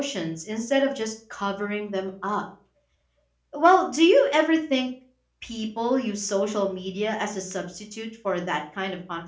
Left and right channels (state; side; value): identical; both; correlation 1.00